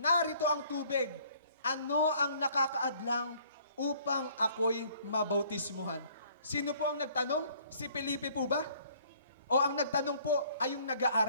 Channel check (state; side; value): inverted; both; correlation -0.58